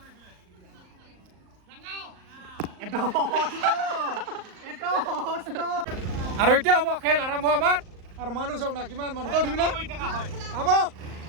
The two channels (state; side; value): late; left; 38 ms